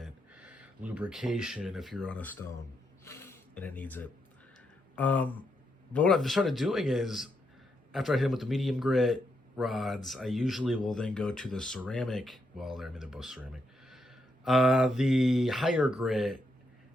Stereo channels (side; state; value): both; normal; correlation 0.80